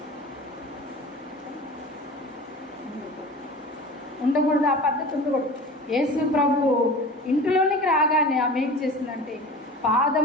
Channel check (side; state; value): both; normal; correlation 0.37